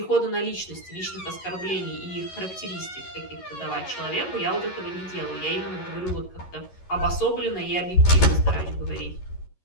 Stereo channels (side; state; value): right; late; 11 ms